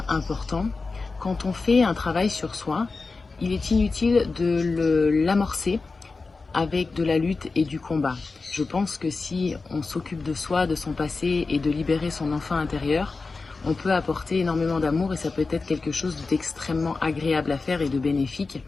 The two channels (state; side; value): quieter; right; 4.0 dB